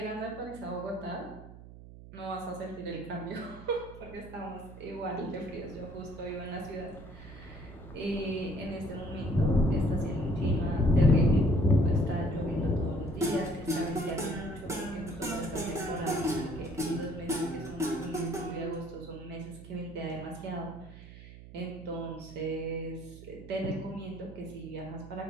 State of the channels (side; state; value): right; noise; hum, 16 dB below the sound